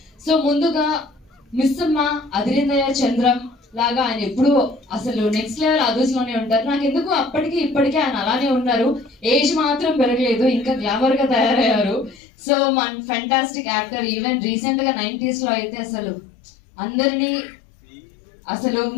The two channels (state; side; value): drops out; right; at 12.2 s